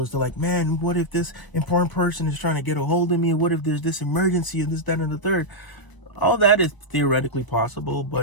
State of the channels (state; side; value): late; right; 1.0 ms